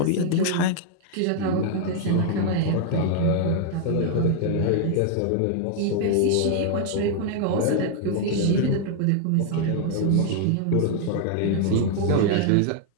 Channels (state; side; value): different; both; correlation 0.00